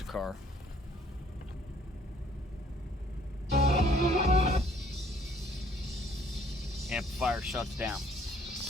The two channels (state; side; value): normal; both; correlation 0.61